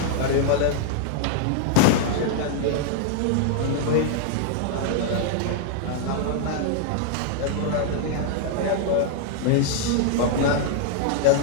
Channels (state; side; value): different; both; correlation 0.00